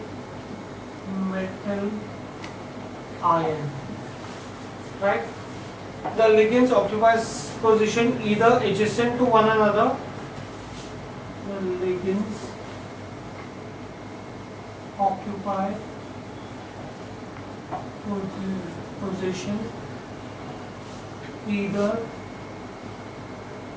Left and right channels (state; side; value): identical; both; correlation 1.00